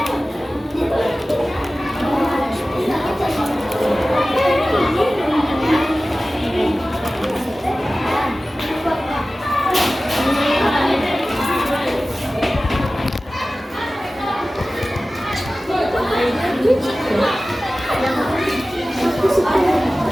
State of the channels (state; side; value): normal; both; correlation 0.96